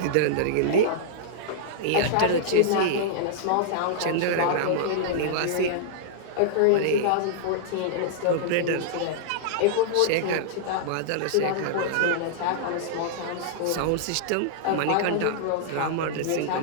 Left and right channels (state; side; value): different; both; correlation -0.02